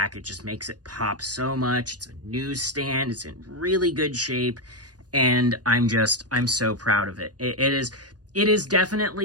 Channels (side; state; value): left; late; 0.69 ms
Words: It just makes it pop so much. It's a newsstand. It's in really good shape, and I'm so proud of it. It is